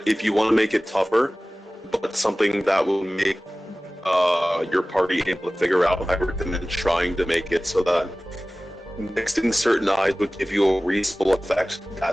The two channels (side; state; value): both; normal; correlation 0.97